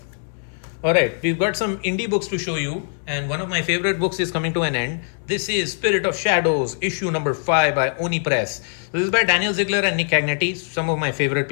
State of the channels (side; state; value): right; silent; 63 dB below the other